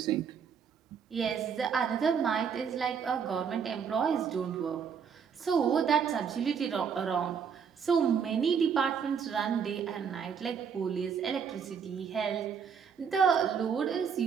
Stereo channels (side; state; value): left; quieter; 7.0 dB